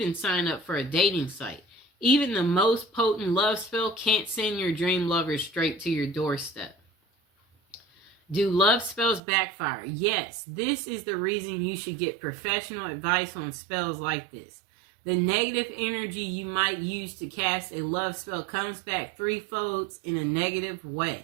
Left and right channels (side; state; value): left; drops out; at 9.2 s